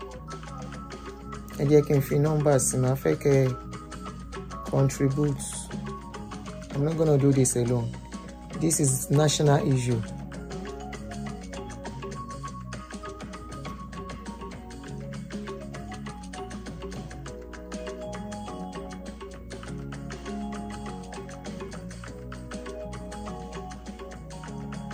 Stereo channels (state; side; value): identical; both; correlation 1.00